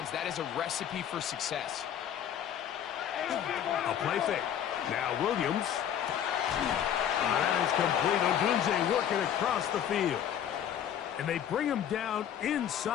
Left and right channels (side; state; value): right; quieter; 9.6 dB